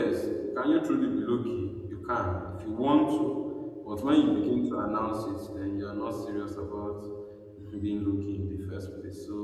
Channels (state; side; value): identical; both; correlation 1.00